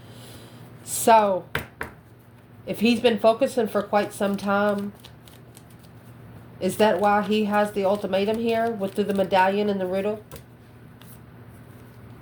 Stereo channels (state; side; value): identical; both; correlation 1.00